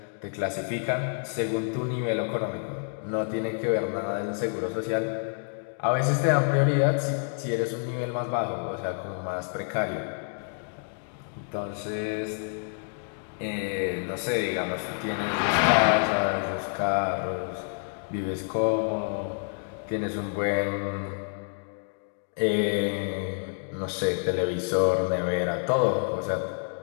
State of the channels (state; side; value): silent; right; 59 dB below the other